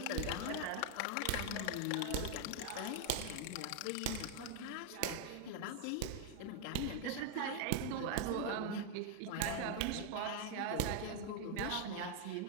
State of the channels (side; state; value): both; different; correlation 0.00